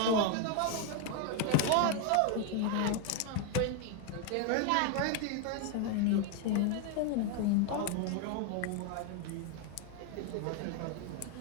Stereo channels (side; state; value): both; different; correlation 0.01